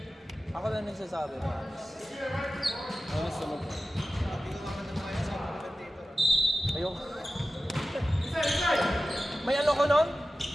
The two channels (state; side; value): normal; both; correlation 0.94